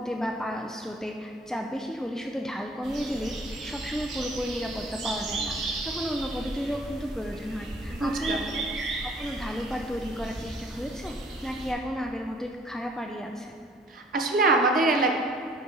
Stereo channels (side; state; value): both; normal; correlation 0.57